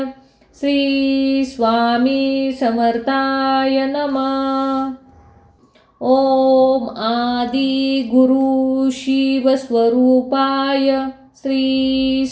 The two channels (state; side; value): identical; both; correlation 1.00